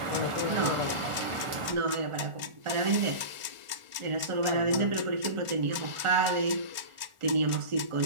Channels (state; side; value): late; left; 1.4 ms